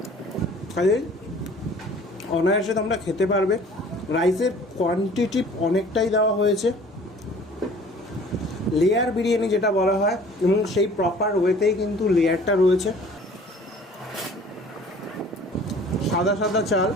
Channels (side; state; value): both; normal; correlation 0.50